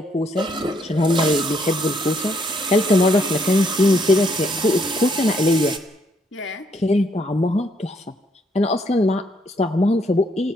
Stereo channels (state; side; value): normal; both; correlation 0.71